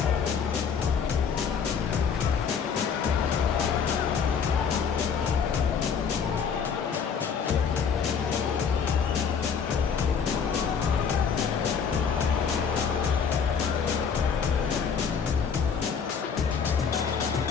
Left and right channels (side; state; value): right; quieter; 6.5 dB